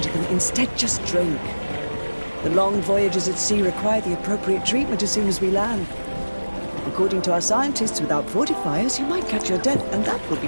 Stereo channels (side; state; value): both; inverted; correlation -1.00